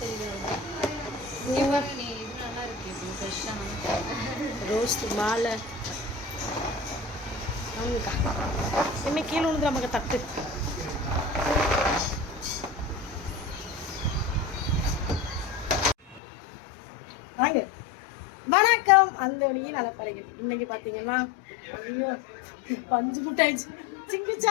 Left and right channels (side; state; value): right; drops out; at 16.2 s